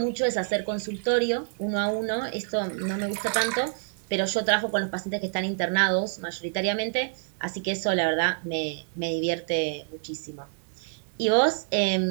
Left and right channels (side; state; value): left; silent; digital silence